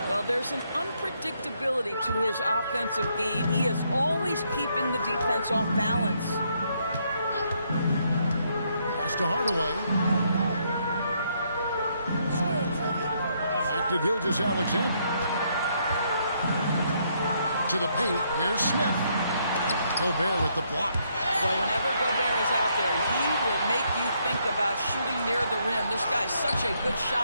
Well, know, there's an unpredictability to his offensive game. He is always keeping the defense off balance. Pass to Hardaway. Back to Gilgeous-Alexander. To the paint. Here's Smith. Gobert with the block. Well, whenever Gobert is out there, he will make you think about shooting near the rim. This guy's such a good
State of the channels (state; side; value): inverted; both; correlation -0.73